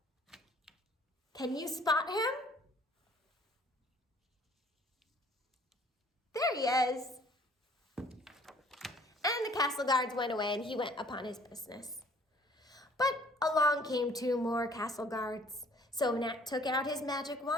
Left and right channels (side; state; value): both; normal; correlation 0.56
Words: Can you spot him? There he is. And the castle guards went away and he went upon his business. But along came 2 more castle guards. So Nat took out his magic